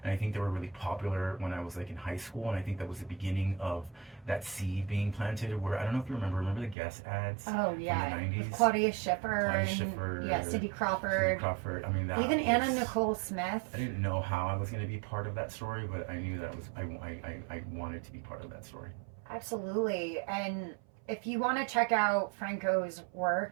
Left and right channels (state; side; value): drops out; left; at 6.8 s